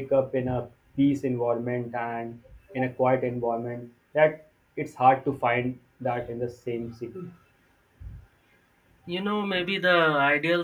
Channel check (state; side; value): identical; both; correlation 1.00